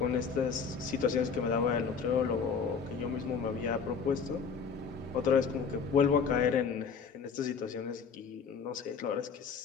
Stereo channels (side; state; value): right; quieter; 5.9 dB